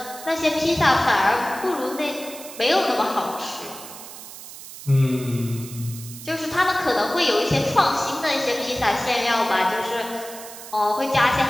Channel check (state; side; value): noise; right; hiss, 14 dB below the sound